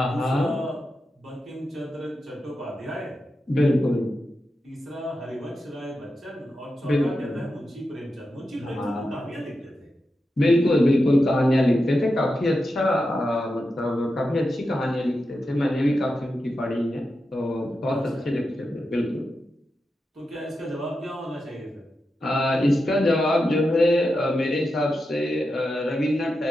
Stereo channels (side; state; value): both; normal; correlation 0.89